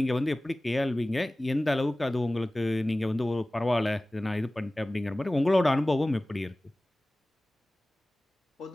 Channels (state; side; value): normal; both; correlation 0.98